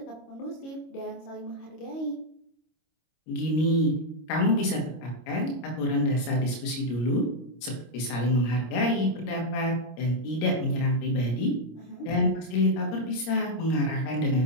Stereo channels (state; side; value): late; right; 26 ms